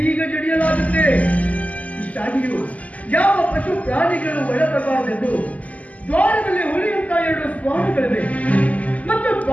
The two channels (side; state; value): right; late; 0.072 ms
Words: ಜಡಿಯಲಾಗುತ್ತೆ. ಇಷ್ಟಾಗಿಯೂ ಯಾವ ಪಶು ಪ್ರಾಣಿಗಳು ಒಳಬರಬಾರದೆಂದು ದ್ವಾರದಲ್ಲಿ ಉಳಿಯುವಂತ 2 ಸ್ವಾಮಿಗಳಿವೆ ಮತ್ತು